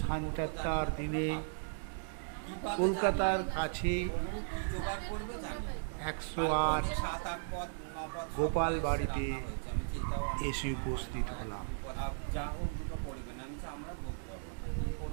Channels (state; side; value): silent; left; digital silence